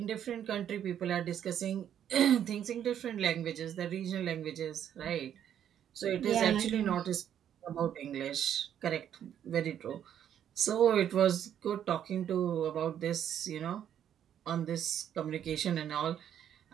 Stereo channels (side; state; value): left; quieter; 9.8 dB